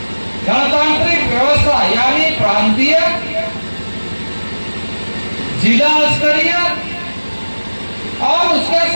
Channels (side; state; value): both; inverted; correlation -1.00